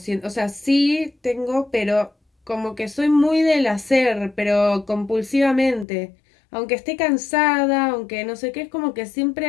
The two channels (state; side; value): drops out; right; at 5.9 s